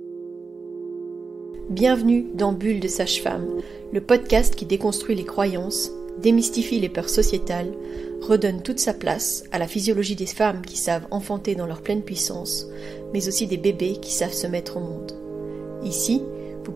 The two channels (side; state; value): left; quieter; 4.5 dB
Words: Bienvenue dans Bulle de Sage-Femme, le podcast qui déconstruit les croyances, démystifie les peurs sociétales, redonne toute sa place à la physiologie des femmes qui savent enfanter dans leur pleine puissance, mais aussi des bébés qui savent se mettre au monde. Ici, vous